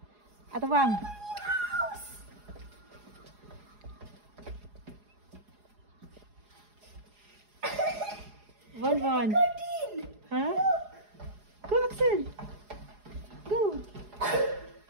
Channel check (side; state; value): left; late; 4.8 ms